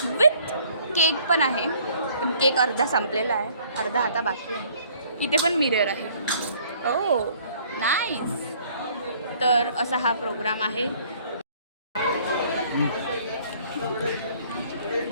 विथ केक पण आहे. पण केक अर्धा संपलेला आहे, अर्धा आता बाकी आहे. इथे पण मिरर आहे. हो नाईस. तर असा हा प्रोग्राम आहे.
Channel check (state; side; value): inverted; both; correlation -0.58